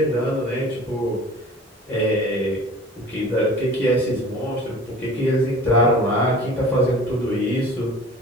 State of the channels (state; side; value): normal; both; correlation 0.43